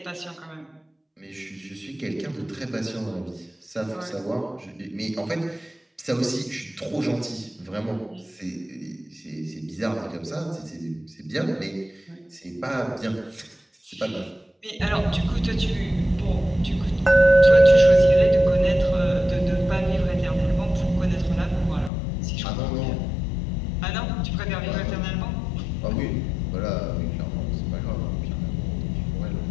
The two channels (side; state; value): right; drops out; at 21.9 s